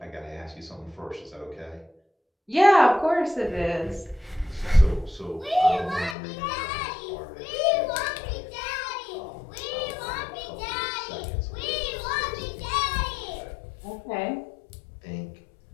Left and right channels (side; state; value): right; drops out; at 6.2 s